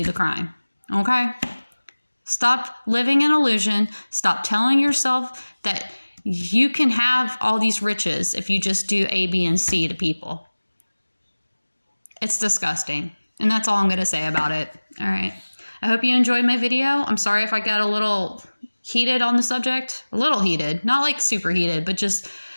the crime, okay? Stop living in illusion. Stop telling yourself that you can have all these riches if you just do A, B, and C to people. It's disgusting. And that's all I'm going to say about it. All right. I hope you enjoyed my video. I'm sorry if I got a little heated on the subject. A little heated. Not like super heated, but just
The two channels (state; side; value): inverted; both; correlation -1.00